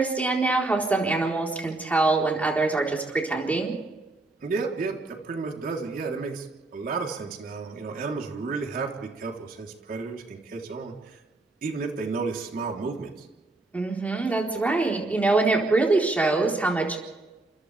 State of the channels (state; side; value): quieter; left; 3.0 dB